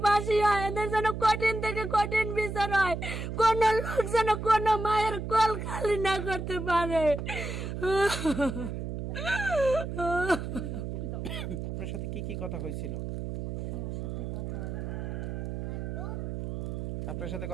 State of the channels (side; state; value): right; noise; hum, 5 dB below the sound